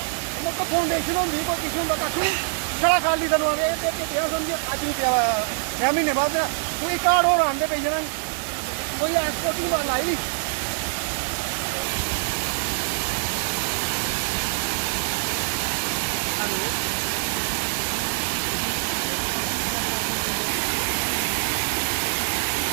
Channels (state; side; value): silent; left; digital silence